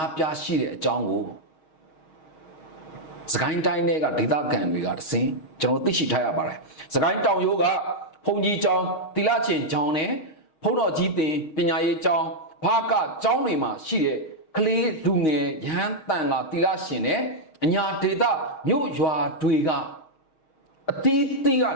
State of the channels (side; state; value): right; late; 6.4 ms